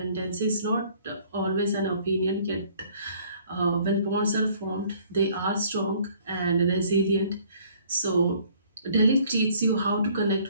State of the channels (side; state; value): both; inverted; correlation -0.58